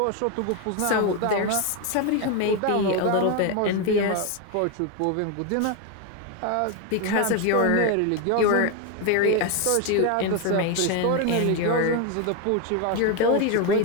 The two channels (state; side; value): different; both; correlation 0.01